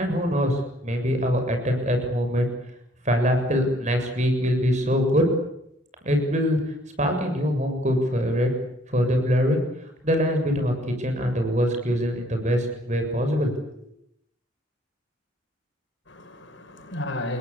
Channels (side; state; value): both; normal; correlation 0.62